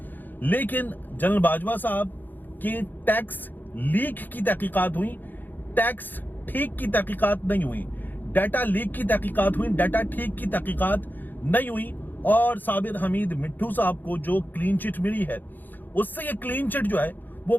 لیکن جنرل باجوہ صاحب کی ٹیکس لیک کی تحقیقات ہوئی، ٹیکس ٹھیک کی تحقیقات نہیں ہوئی، ڈیٹا لیک کی تحقیقات ہوئی، ڈیٹا ٹھیک کی تحقیقات نہیں ہوئی. اور صابر حمید مٹھو صاحب کو جو کلین چٹ ملی ہے، اس سے یہ کلین چٹ جو ہے وہ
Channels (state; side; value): late; right; 0.088 ms